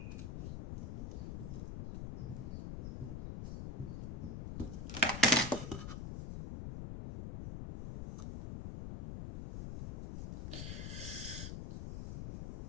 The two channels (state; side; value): noise; left; rumble, 5 dB below the sound